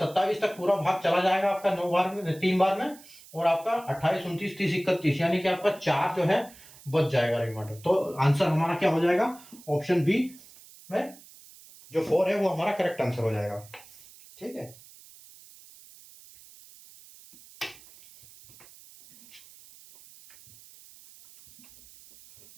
तक पूरा भाग चला जाएगा आपका 9 बार में, 3 बार में, और आपका 28 29 30 31 यानी कि आपका 4 जो है बच जाएगा रिमाइंडर। तो आंसर हमारा क्या हो जाएगा, ऑप्शन बी में जो 4 है वो हमारा करेक्ट आंसर हो जाएगा। ठीक है,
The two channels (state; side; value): noise; right; hiss, 22 dB below the sound